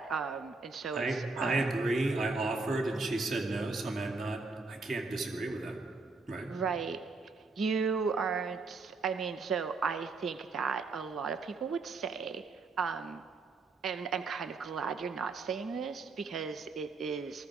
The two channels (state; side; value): quieter; left; 3.9 dB